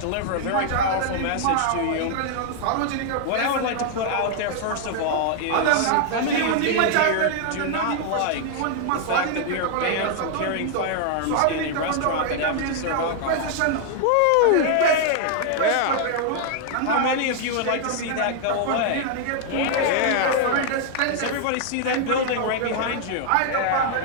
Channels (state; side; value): different; both; correlation 0.00